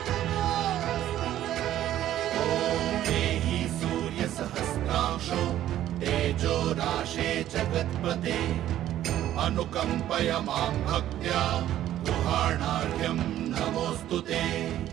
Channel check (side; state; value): left; quieter; 12.5 dB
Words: सहस्रांशो तेजो राशे जगत्पते अनुकंपय मां भक्त्या गृहाणार्घ्यं नमोऽस्तु ते।